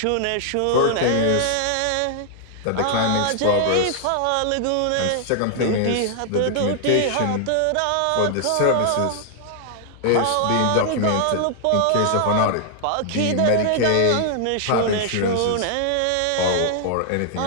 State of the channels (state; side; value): different; both; correlation -0.01